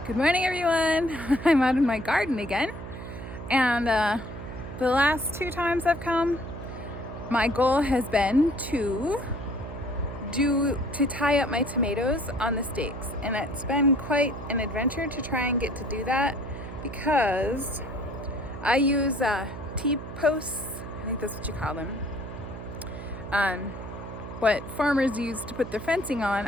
Good morning, everyone. I'm out in my garden again, and the last 2 times I've come, my goal has been to tie up my tomatoes on the stakes, and it's been quite an adventure to try and get to do that because I use T-posts. I think that's what you call them. What farmers use to put their fencing on,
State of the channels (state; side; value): noise; right; hum, 10 dB below the sound